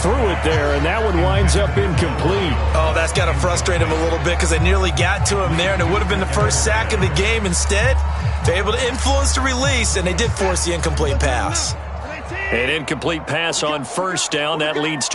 threw it there, and that one winds up incomplete. Oh, that's got to frustrate him a little bit because they nearly got to him there, and it would have been the first sack of the game. Instead, they're able to influence the release, and they did force the incomplete pass. An incomplete pass on first down. That leads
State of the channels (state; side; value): identical; both; correlation 1.00